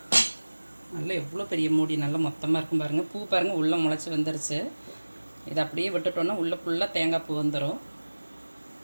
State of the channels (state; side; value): inverted; both; correlation -1.00